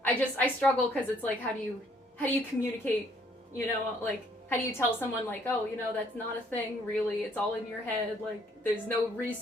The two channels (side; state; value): both; normal; correlation 0.64